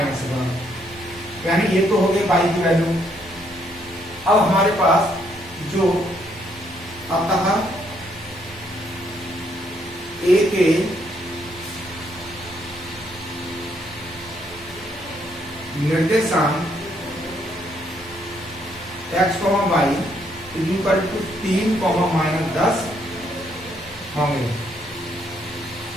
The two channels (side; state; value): both; normal; correlation 0.71